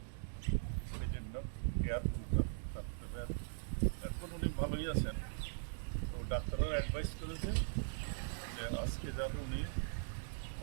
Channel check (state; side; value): silent; left; digital silence